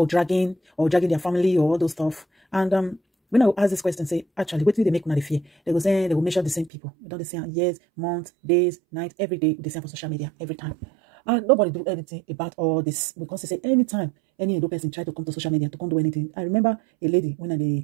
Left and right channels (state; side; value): drops out; left; at 6.7 s